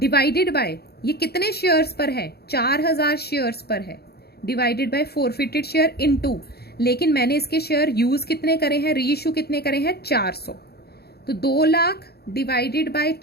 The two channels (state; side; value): late; right; 0.46 ms